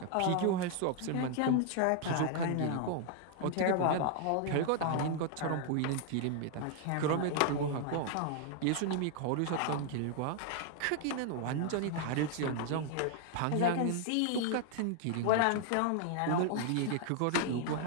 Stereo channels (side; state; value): both; different; correlation 0.00